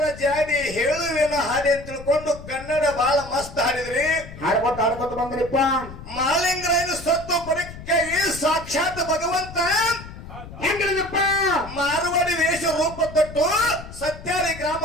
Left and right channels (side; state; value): left; noise; rumble, 14 dB below the sound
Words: ಜಾಡಿ ಹೇಳುವೆನ ಹಾಡಿ ಅಂತ ತಿಳ್ಕೊಂಡು ಕನ್ನಡ ಬಹಳ ಮಸ್ತ್ ಹಾಡಿದ್ರಿ. ಹಾಡ್ಕೊತ ಬಂದ್ರಿಪ್ಪ. ಮಾಲಿಂಗರಾಯನ ಸತ್ತು ಪರೀಕ್ಷೆಗೆ ಸಾಕ್ಷಾತ್ ಭಗವಂತ ಹೆಂಗಿದಪ್ಪ ಮಾರವಾಡಿ ವೇಷ ರೂಪ ತೊಟ್ಟು ಸತ್ಯಾರಿ